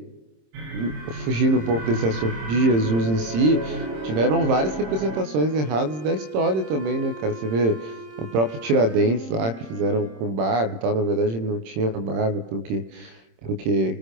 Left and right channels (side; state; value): left; late; 26 ms